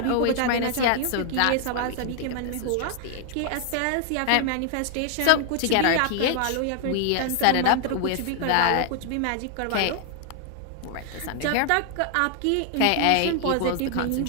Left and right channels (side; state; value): both; different; correlation 0.00